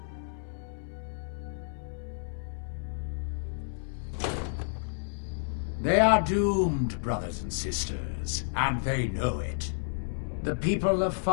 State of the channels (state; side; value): silent; right; 57 dB below the other